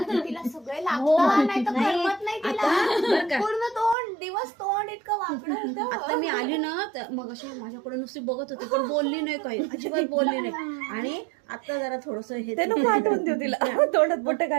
सगळे लागतं, नाही तर करमत नाही तिला. पूर्ण दिवस तोंड इतकं वाकडं होतं. आता मी आली ना तर मग अशी माझ्याकडे नुसती बघत होती, पण बोलली नाही, काही अजिबात बोलली नाही. आणि आता जरा थोडस हे ते नको आठवण देऊ तिला, तोंडात बोट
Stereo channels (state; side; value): drops out; left; at 4.0 s